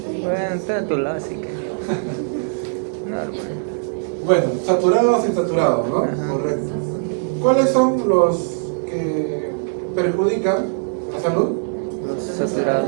Bueno, está a tu lado, así que. Normal. Bueno, saturados e insaturados, ¿no? Ajá. Correcto. ¿Cuáles son los que perjudican la salud? Los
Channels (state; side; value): silent; left; 65 dB below the other